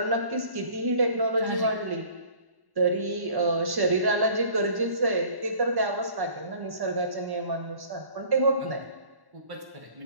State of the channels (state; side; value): late; left; 1.1 ms